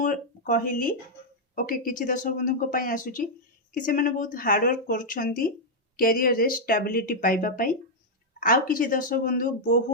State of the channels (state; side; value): normal; both; correlation -0.03